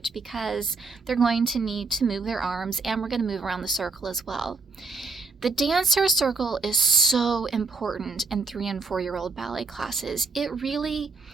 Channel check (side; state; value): left; quieter; 4.3 dB